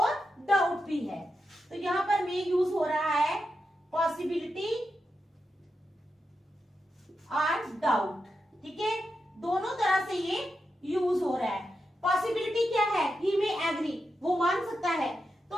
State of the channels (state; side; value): normal; both; correlation 0.87